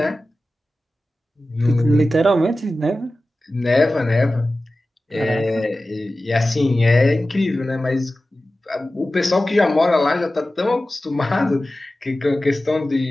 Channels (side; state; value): both; normal; correlation 0.95